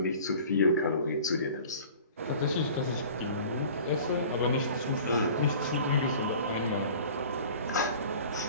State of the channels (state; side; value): inverted; both; correlation -0.45